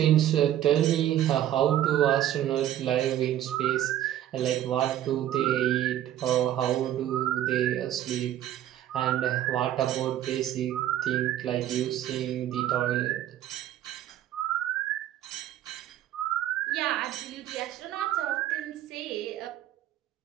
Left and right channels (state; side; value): quieter; left; 12.1 dB